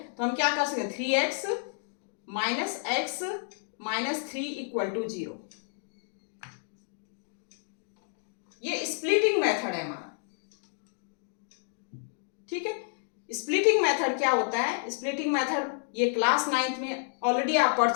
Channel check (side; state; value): right; silent; digital silence